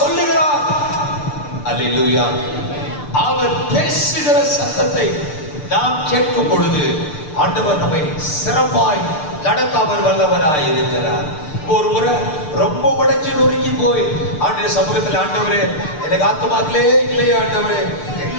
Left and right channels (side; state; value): right; late; 6.7 ms